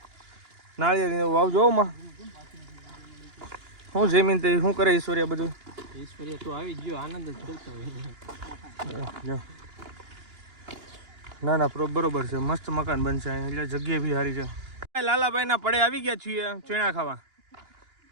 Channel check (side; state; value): left; late; 2.9 ms